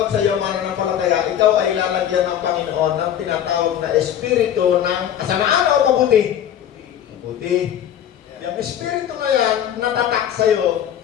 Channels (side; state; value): right; quieter; 10.2 dB